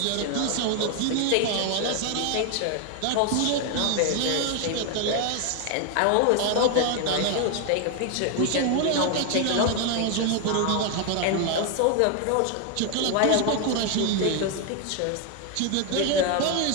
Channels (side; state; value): both; different; correlation 0.01